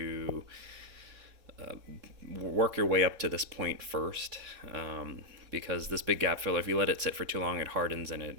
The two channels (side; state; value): left; late; 3.7 ms